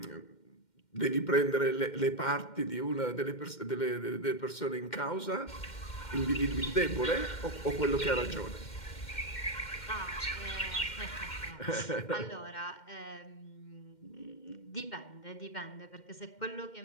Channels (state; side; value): late; right; 2.1 ms